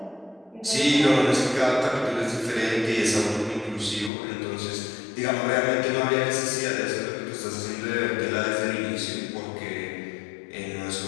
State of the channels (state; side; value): drops out; right; at 4.1 s